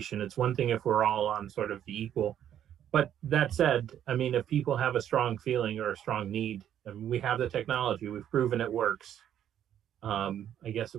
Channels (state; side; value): quieter; left; 10.3 dB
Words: It's one thing if we're all on sort of the equal, but that said, if people have a strong feeling or a strong need, we have the technology, we've proven it works. I guess it